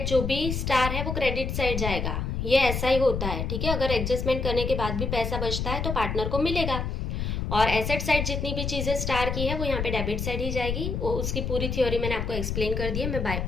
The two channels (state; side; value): noise; left; rumble, 2 dB below the sound